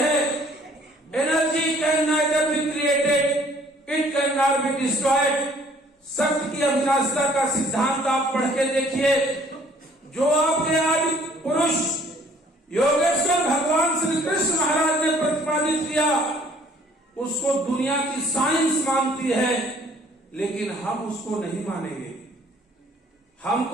Energy can neither be created, it can not be destroyed. सत्य की अविनाशिता का सिद्धांत आप पढ़ के देखिए। जो आपके आदि पुरुष योगेश्वर भगवान श्री कृष्ण महाराज ने प्रतिपादित किया, उसको दुनिया की साइंस मानती है, लेकिन हम उसको नहीं मानेंगे।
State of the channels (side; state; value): both; normal; correlation 0.58